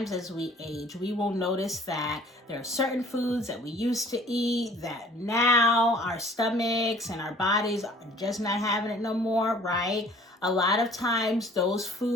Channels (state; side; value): normal; both; correlation 0.52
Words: as we age, we will notice that there are certain foods that we used to eat that now our stomachs and our bodies are just not having it no more, right? A lot of times those